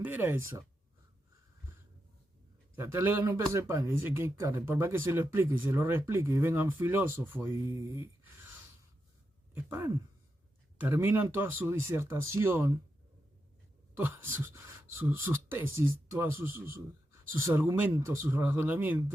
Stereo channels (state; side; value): normal; both; correlation 0.86